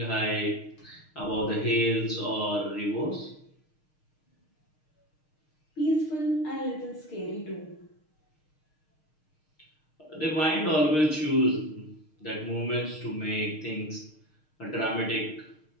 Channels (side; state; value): right; late; 6.5 ms